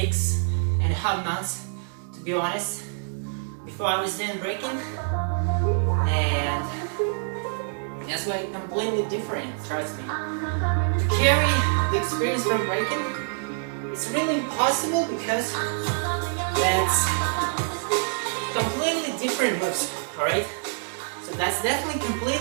months, to be honest. Before I was doing breaking, and that's why it's completely different, trust me. To carry the experience from breaking, it's really impossible because that's completely different moves, alright? So that's definitely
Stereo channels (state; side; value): silent; left; digital silence